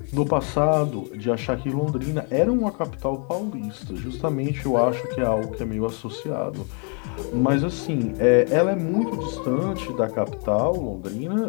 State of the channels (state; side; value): quieter; right; 39.1 dB